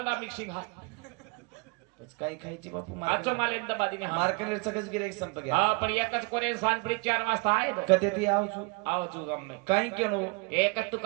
मिक्सिंग है काही खायची बापू आजचो माल एकदम बादीने हा मार्केट सगळंच गिराईक संप गया हा पण एकच कोरे सांजपडी 4 वाजता आहे तो. कधी ती आवचू आव तू गम में काही केनो एकच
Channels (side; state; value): left; quieter; 29.9 dB